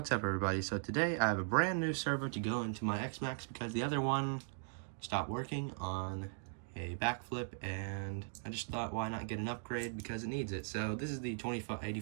up, everybody? So today I have a brand new servo to go into my XMaxx because the other one stopped working on a backflip, and I just thought, why not get an upgrade because it needs it. So this is the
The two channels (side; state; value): left; silent; digital silence